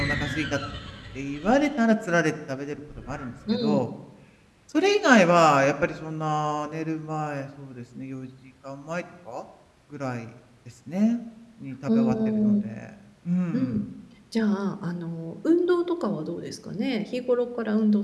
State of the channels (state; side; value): identical; both; correlation 1.00